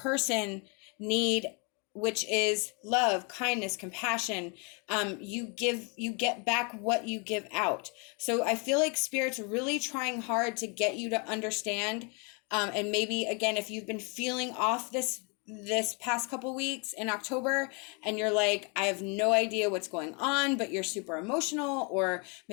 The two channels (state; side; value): quieter; right; 33.7 dB